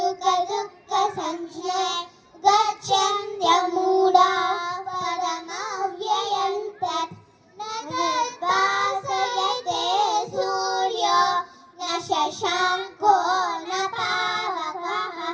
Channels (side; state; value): both; identical; correlation 1.00